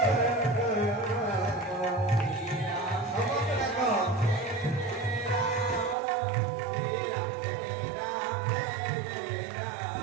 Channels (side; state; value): left; drops out; at 6.0 s